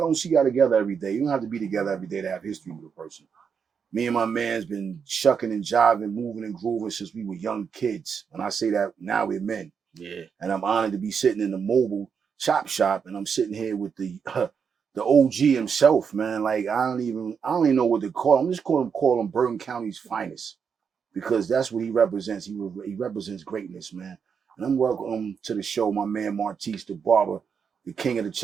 see y'all together every day. You don't have to be together every day to have history with a person. Me and my man's been shucking and jiving, moving and grooving since we were young kids. And I say that now we're men. Yeah. And I'm honored to be sitting in the mobile ChopShop, and I'm sitting here with the OG himself, man. Like I don't even know what to call him. I'm just call him Bergen County's finest, because that's what he represents. He represents greatness, man. And I'm welcome to the show, my man Martise the Barber, the king of the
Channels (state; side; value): quieter; left; 6.5 dB